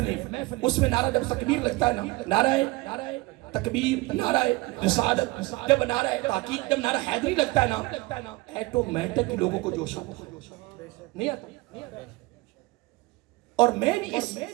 اس میں نعرہ جب تکبیر لگتا ہے نا، نعرہ تکبیر، نعرہ رسالت، جب نعرہ تحقیق، جب نعرہ حیدری لگتا ہے نا، ایٹومیٹک لوگوں کو جوش آتا نہیں آتا۔ اور میں بھی اس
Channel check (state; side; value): quieter; left; 22.8 dB